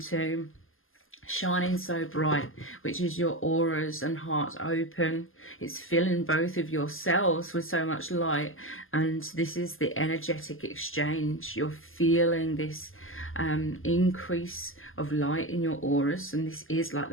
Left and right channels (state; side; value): late; right; 0.59 ms